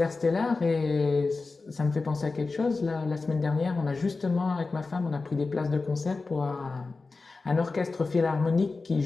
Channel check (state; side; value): quieter; right; 3.9 dB